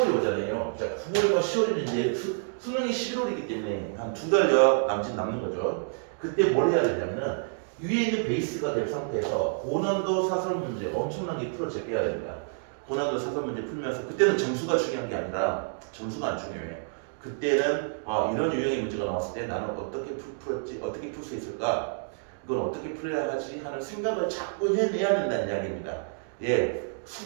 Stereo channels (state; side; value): silent; left; digital silence